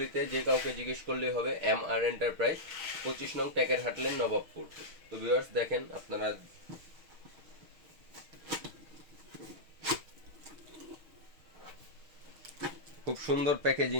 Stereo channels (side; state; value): left; late; 6.4 ms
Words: যে কাউকে জিজ্ঞেস করলেই হবে এমআর এন্টারপ্রাইজ, 25 নং টেকের হাটলেন, নবাবপুর। তো ভিউয়ার্স, দেখেন আপনারা খুব সুন্দর